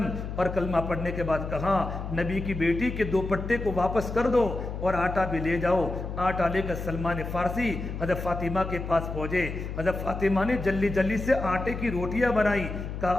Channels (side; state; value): left; noise; hum, 6 dB below the sound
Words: اور کلمہ پڑھنے کے بعد کہا نبی کی بیٹی کے دوپٹے کو واپس کر دو اور آٹا بھی لے جاؤ۔ آٹا لے کر سلمان فارسی حضرت فاطمہ کے پاس پہنچے۔ حضرت فاطمہ نے جلدی سے آٹے کی روٹیاں بنائی، کہا